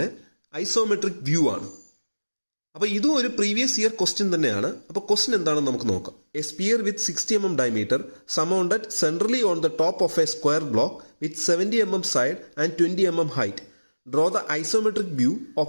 ഐസോമെട്രിക് വ്യൂ ആണ്. അപ്പോൾ ഇതും ഒരു പ്രീവിയസ് ഇയർ ക്വസ്റ്റ്യൻ തന്നെയാണ്. അപ്പോൾ ക്വസ്റ്റ്യൻ എന്താണെന്ന് നമുക്ക് നോക്കാം. A sphere with 60 mm diameter surmounted centrally on the top of a square block with 70 mm side and 20 mm height. Draw the isometric view of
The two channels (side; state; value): both; inverted; correlation -1.00